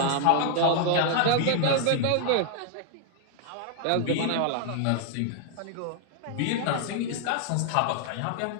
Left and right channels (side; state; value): both; different; correlation -0.01